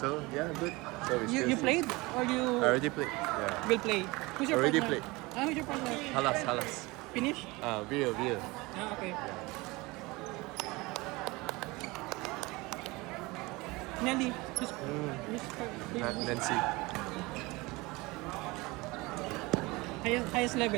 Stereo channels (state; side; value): quieter; left; 23.2 dB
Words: yeah, good. So it's You good. played? Or you I already played. Yeah. will play? Who's your Already partner? played. Who's your partner? Halas. Finish? Real. Ah, okay. Nelly, who's Not Nancy. highest